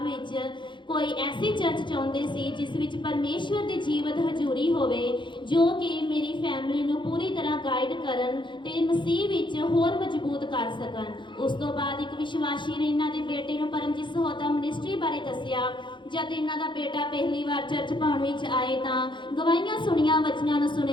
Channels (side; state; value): right; late; 0.23 ms